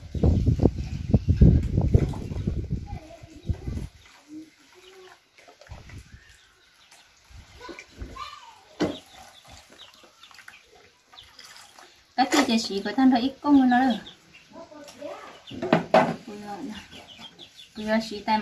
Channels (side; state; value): both; identical; correlation 1.00